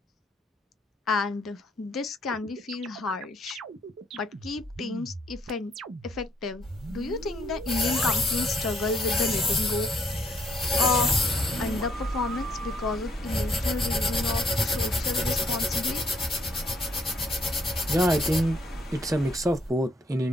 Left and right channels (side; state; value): both; normal; correlation 0.68